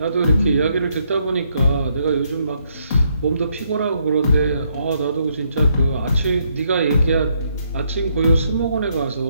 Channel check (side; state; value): both; inverted; correlation -0.74